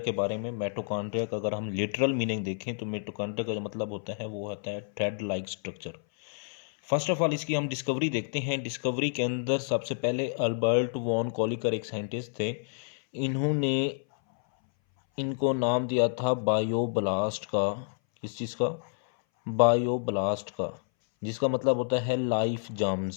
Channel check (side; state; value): right; silent; 58 dB below the other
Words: बारे में। मिटोकॉन्ड्रिया का अगर हम लिटरल मीनिंग देखें तो मिटोकॉन्ड्रिया का जो मतलब होता है वो होता है thread like structure. First of all इसकी हम डिस्कवरी देखते हैं। डिस्कवरी के अंदर सबसे पहले अल्बर्ट वॉन कॉलिकर एक साइंटिस्ट थे। इन्होंने इनको नाम दिया था बायोब्लास्ट का। किस चीज़ का? बायोब्लास्ट का, जिसका मतलब होता है लाइफ